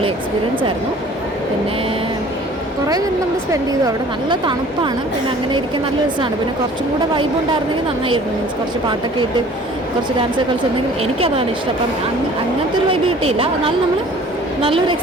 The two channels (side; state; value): both; normal; correlation 0.50